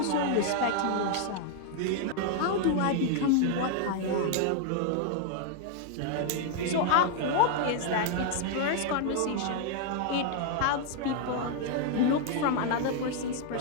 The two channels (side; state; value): both; different; correlation 0.00